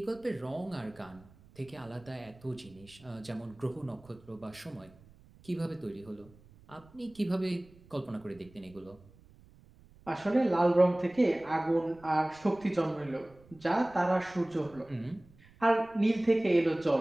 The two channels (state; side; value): noise; right; rumble, 25 dB below the sound